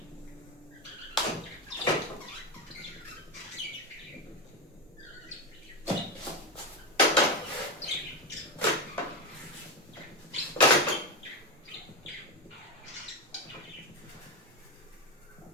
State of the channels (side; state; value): both; normal; correlation 0.13